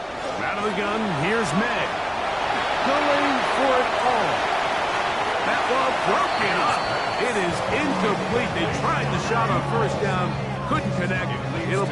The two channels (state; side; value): identical; both; correlation 1.00